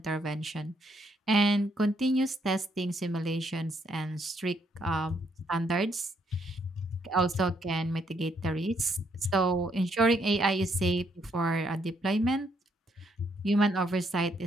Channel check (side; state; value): both; normal; correlation 0.72